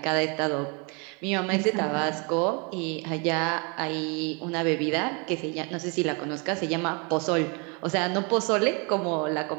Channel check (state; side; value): quieter; left; 32.3 dB